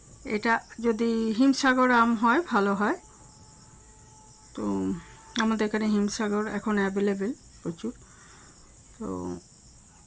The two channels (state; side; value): identical; both; correlation 1.00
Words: এটা যদি হিমসাগর আম হয় ভালো হয়, তো আমাদের এখানে হিমসাগর এখন অ্যাভেলেবেল প্রচুর। তো